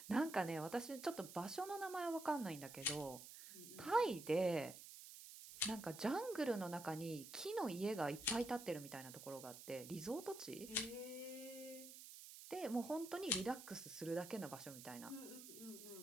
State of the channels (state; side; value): noise; right; hiss, 13 dB below the sound